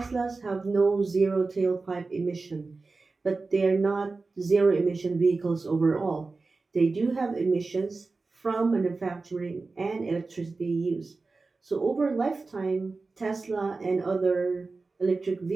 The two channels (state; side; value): quieter; left; 3.8 dB